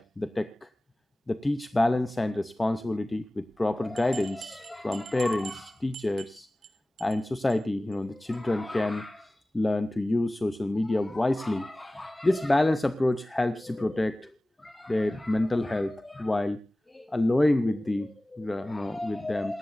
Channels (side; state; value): both; normal; correlation 0.98